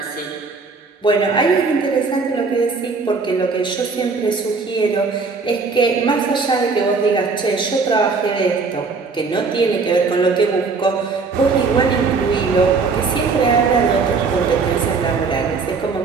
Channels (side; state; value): left; quieter; 4.5 dB